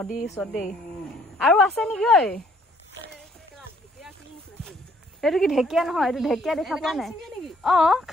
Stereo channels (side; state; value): both; normal; correlation 0.64